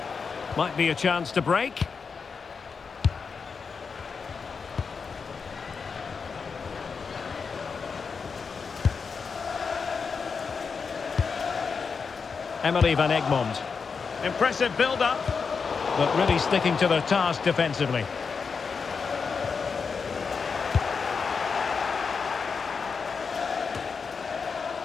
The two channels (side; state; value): right; quieter; 5.4 dB